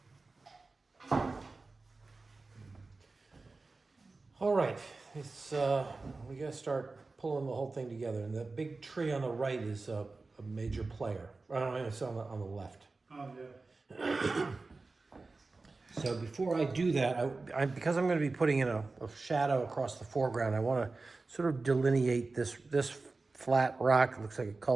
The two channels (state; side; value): quieter; left; 3.7 dB